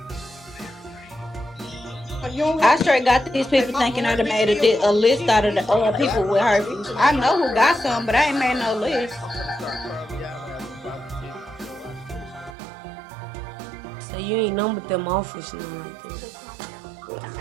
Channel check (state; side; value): drops out; left; at 12.6 s